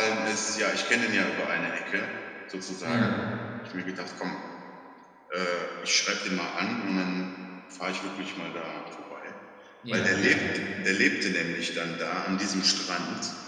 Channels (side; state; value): both; identical; correlation 1.00